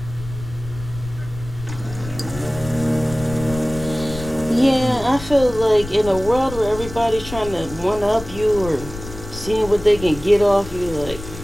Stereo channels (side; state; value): left; noise; rumble, 12 dB below the sound